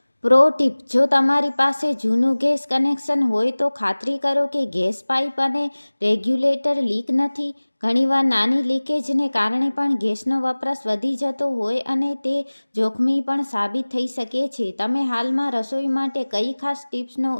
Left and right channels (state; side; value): inverted; both; correlation -1.00